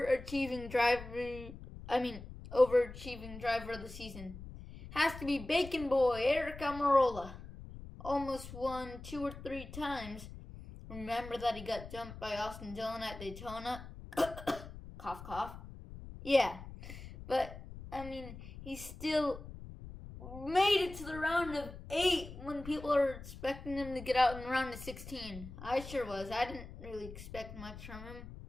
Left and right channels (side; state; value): left; noise; rumble, 13 dB below the sound